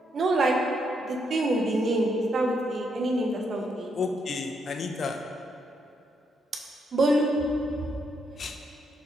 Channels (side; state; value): both; normal; correlation 0.77